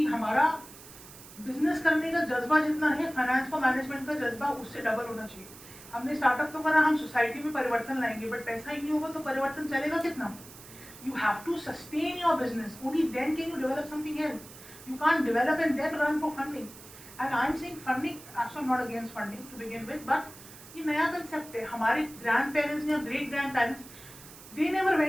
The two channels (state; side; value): noise; right; hiss, 18 dB below the sound